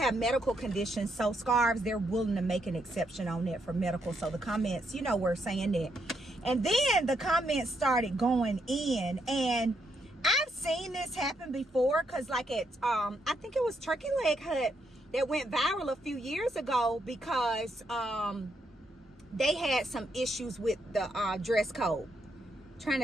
medical conditions, so scarves, they're willing to make an exception on that for medical. So the comments, you know, were saying that. And then the comments started going in, and I've seen this happen before, because like at, I think it was Turkey Leg Hut that went viral a few years ago because they had some issues with the dress code. Trying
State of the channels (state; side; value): normal; both; correlation 0.78